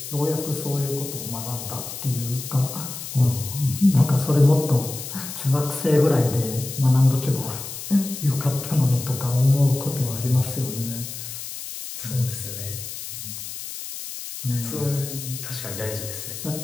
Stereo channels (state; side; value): noise; left; hiss, 9 dB below the sound